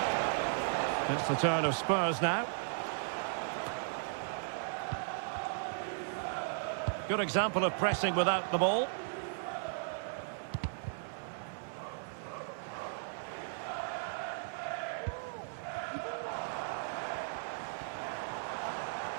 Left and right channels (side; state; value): left; silent; 54 dB below the other